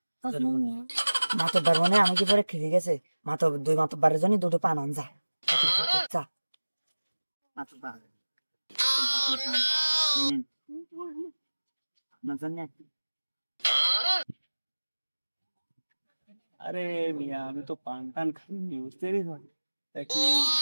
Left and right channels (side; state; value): both; inverted; correlation -1.00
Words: মাতব্বার মনে আমি কি পরে খেয়ে গেছে দুই মাতব্বারের জন্য দুটো পান আন যা যা। আরে মিয়া আমি তো পান টান খাইনি বুঝতে পারিস